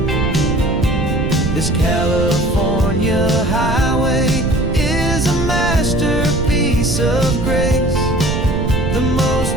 This California highway is a masterpiece of grace, the most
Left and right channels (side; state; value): right; noise; rumble, 2 dB below the sound